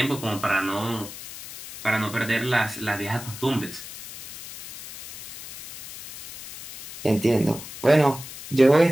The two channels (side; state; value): left; noise; hiss, 13 dB below the sound